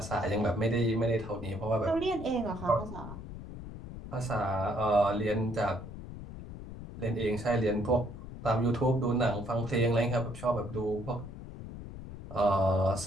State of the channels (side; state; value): left; noise; rumble, 11 dB below the sound